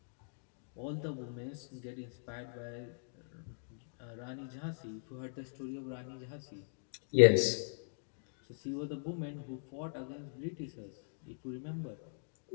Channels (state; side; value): silent; right; digital silence